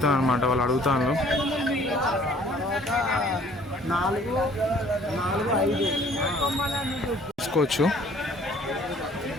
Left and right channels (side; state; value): both; normal; correlation 0.56